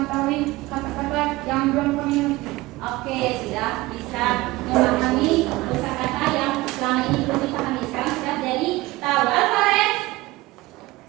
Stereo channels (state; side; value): quieter; left; 19.9 dB